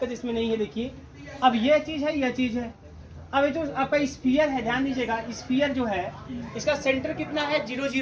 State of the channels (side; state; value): both; identical; correlation 1.00